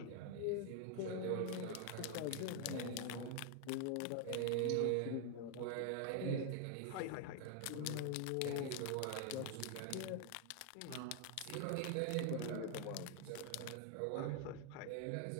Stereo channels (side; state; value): both; different; correlation 0.00